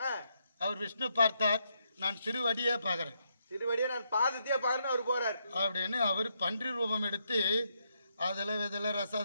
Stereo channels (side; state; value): both; inverted; correlation -0.79